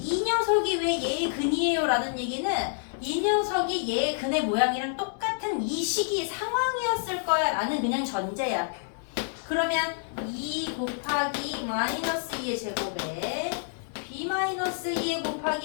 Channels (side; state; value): right; silent; digital silence